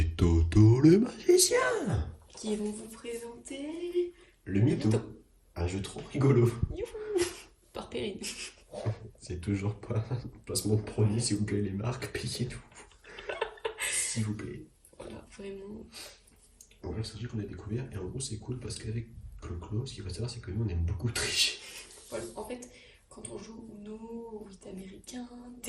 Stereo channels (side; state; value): both; identical; correlation 1.00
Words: Toto le magicien. qui vont vous présenter Le mytho. mytho. Un jeu trop rigolo. Youhou par Perrine. C'est toujours pas un placement de produit, s'il vous plaît, les marques, payez-nous. S'il vous plaît. Voilà, vraiment. En vrai, c'est un jeu qu'on a découvert, et en gros, c'est cool parce qu'avec Clo-Clo, ce qu'il faut savoir, c'est que nous, on aime beaucoup tricher. Voilà. En fait, quand on joue au Uno, au 8 américain,